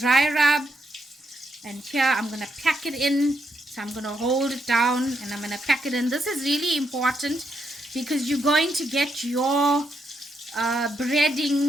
rub. And here I'm going to pack it in. So I'm going to hold it down and I'm going to pack it in. This is really important, because you're going to get your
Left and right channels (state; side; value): normal; both; correlation 0.79